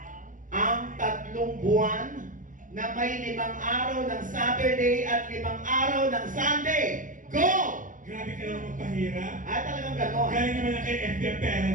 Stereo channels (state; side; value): late; left; 0.38 ms